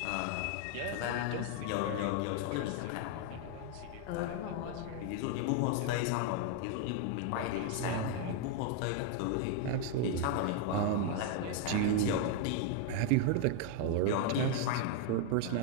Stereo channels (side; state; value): both; different; correlation 0.00